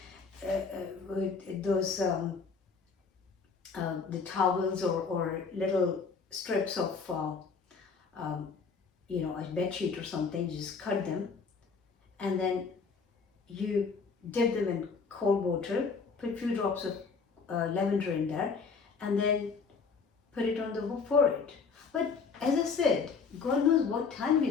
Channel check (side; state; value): right; quieter; 5.2 dB